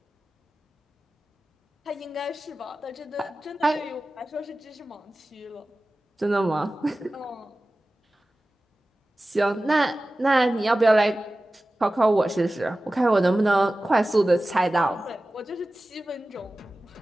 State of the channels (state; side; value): normal; both; correlation 0.96